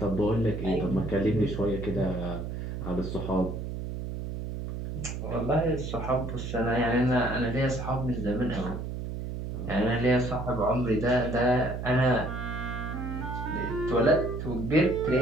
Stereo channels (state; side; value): noise; right; hum, 5 dB below the sound